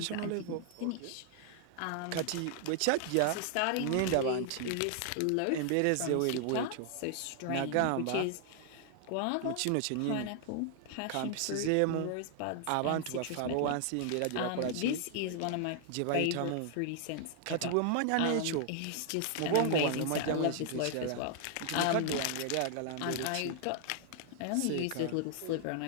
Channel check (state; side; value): different; both; correlation 0.00